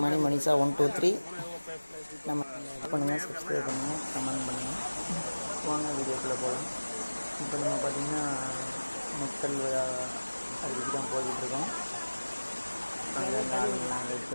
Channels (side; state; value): both; inverted; correlation -1.00